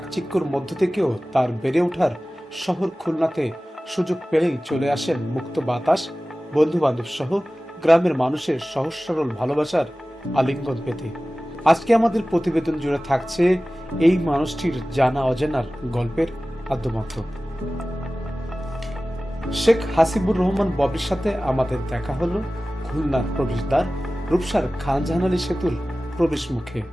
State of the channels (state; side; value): normal; both; correlation 0.97